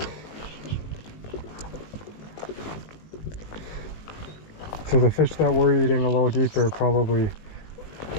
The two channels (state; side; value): late; right; 19 ms